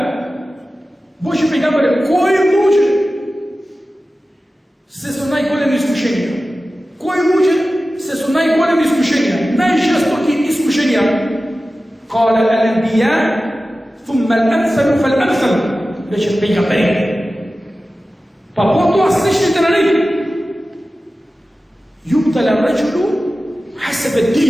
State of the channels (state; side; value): normal; both; correlation 0.95